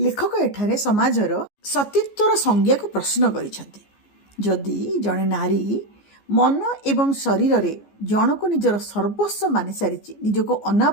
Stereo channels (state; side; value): late; right; 14 ms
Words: एठारे समाजर सतीत्वर संज्ञा को प्रश्न करिसंती। जदि जड़े नारी ମନ ଏବଂ ଶରୀରରେ ଜଣକୁ ନିଜର ସର୍ବସ୍ୱ ମାନି ସାରିଛି, ନିଜକୁ